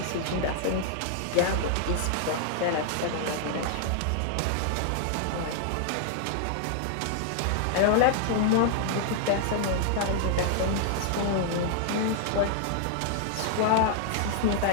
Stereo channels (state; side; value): different; both; correlation -0.01